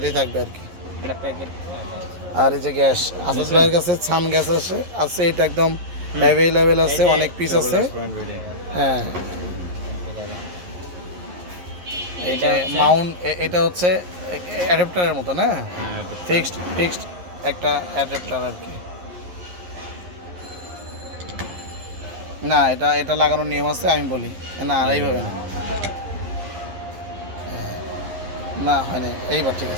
থাকবে আর কি। আর এই যে গ্যাস আসাদ ভাইয়ের কাছে ছান গ্যাস আছে, এটা একদম অ্যাভেলেবেল আছে, অনেক পিস আছে। হ্যাঁ, এটা মাউন্ট, এটা হচ্ছে অ্যাডাপ্টারের মতো না, ফিক্সড একটা অ্যাডাপ্টার আর কি। না, এটা লাগানোর নিয়ম আছে, আমি বলি না আর এইভাবে না, না হয়নি, এইবার ঠিক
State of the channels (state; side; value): late; left; 11 ms